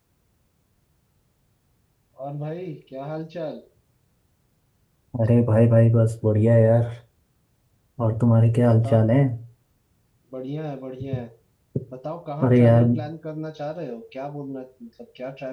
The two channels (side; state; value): both; identical; correlation 1.00